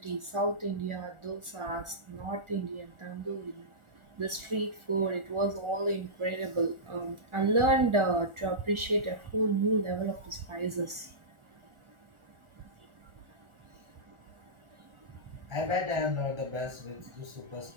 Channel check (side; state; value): left; late; 1.4 ms